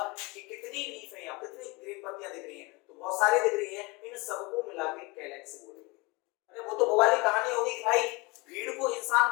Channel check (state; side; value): quieter; right; 25.0 dB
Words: कि कितनी लीफ है, यहाँ कितनी ग्रीन पत्तियां दिख रही हैं, तो बहुत सारी दिख रही हैं, इन सबको मिला के कैलेक्स बोलेंगे। अरे वो तो वो वाली कहानी होगी कि भाई भीड़ को इंसान